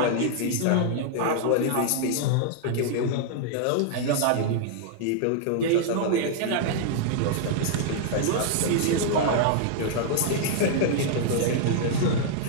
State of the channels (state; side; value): different; both; correlation -0.01